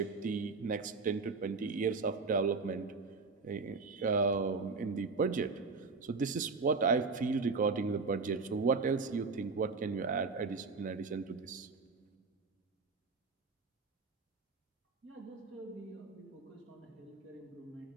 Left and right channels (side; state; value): left; quieter; 4.4 dB